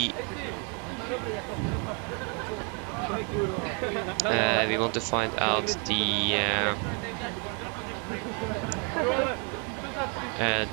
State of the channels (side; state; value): left; quieter; 34.1 dB